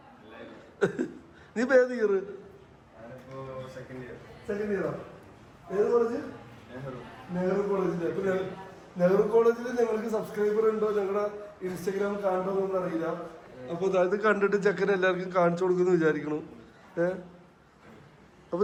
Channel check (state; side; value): identical; both; correlation 1.00